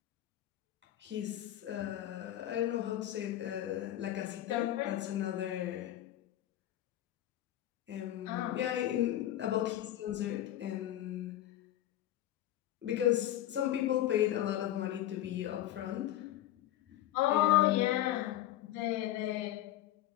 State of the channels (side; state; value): right; quieter; 13.3 dB